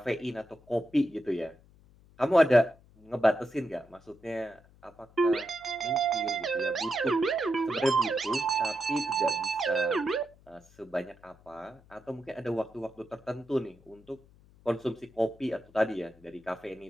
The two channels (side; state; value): left; noise; hum, 27 dB below the sound